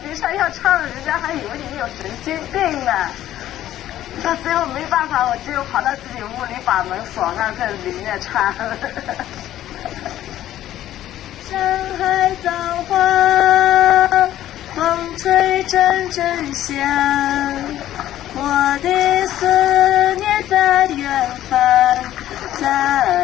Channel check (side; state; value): right; quieter; 12.9 dB